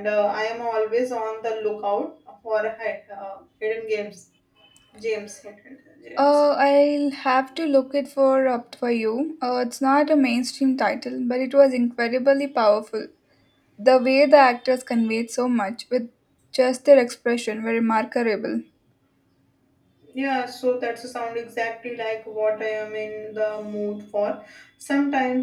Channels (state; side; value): identical; both; correlation 1.00